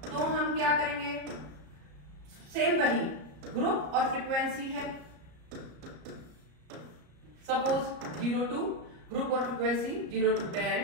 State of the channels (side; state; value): left; late; 34 ms